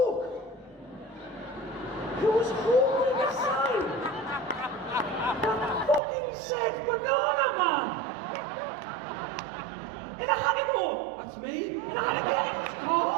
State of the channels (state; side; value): drops out; left; at 6.0 s